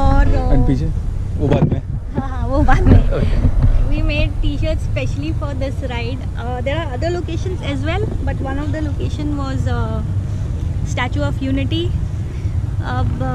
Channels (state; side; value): identical; both; correlation 1.00